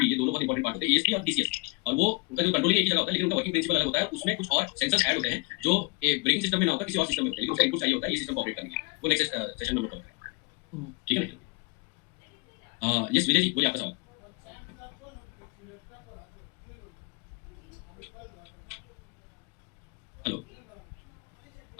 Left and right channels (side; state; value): right; quieter; 28.7 dB